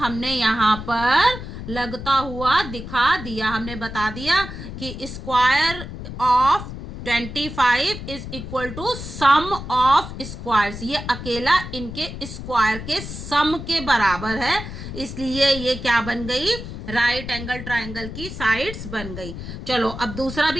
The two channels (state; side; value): noise; left; rumble, 9 dB below the sound